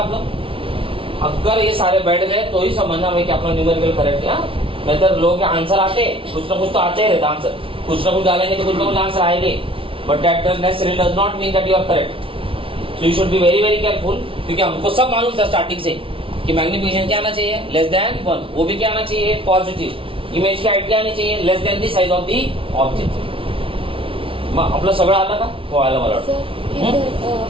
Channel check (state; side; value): late; left; 0.26 ms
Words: अगर ये सारे बैठ गए तो ही समझना है कि अपना न्यूमेरिकल करेक्ट है. नहीं तो लोग के आंसर आते, कुछ ना कुछ तो आते ही रहता आंसर, कुछ ना कुछ डालेंगे तो कुछ ना कुछ आंसर आएंगे, but that necessary does not mean that you are correct. So you should be very very careful, क्योंकि हमको सब मालूम था स्टार्टिंग से कि मैग्निफिकेशन क्या आना चाहिए? लेस देन 1. वो भी क्या आना चाहिए? पॉजिटिव. इमेज की हाइट क्या आनी चाहिए? Less than the size of the object. मग आपलं सगळं आलं का? हो आलं मला वाटतं.